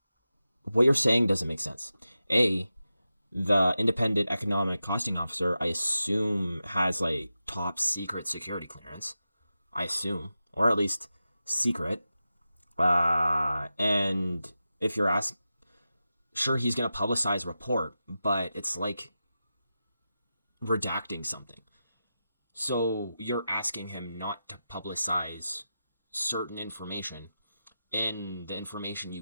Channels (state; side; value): inverted; both; correlation -0.91